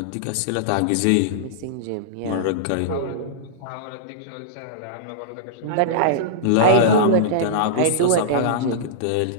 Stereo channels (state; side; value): different; both; correlation -0.03